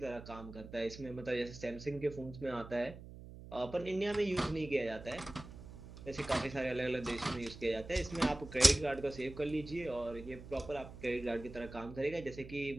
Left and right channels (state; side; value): noise; right; hum, 14 dB below the sound